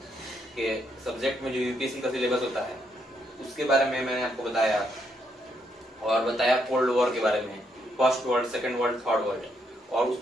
के सब्जेक्ट में जो यूपीएससी का सिलेबस होता है उसके बारे में मैंने आपको बताया, और बताया कोल्ड वॉर के बारे में, first world, second world, third world. और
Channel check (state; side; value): normal; both; correlation 0.76